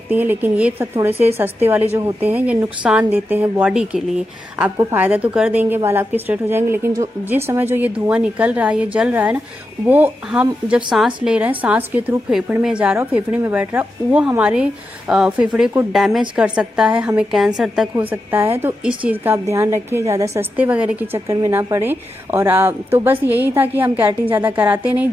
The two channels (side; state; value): both; normal; correlation 0.88